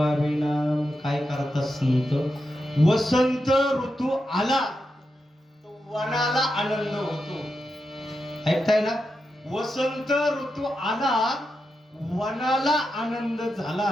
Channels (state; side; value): normal; both; correlation 0.87